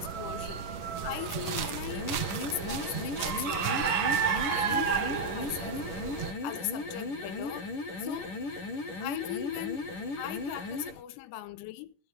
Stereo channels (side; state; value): right; late; 11 ms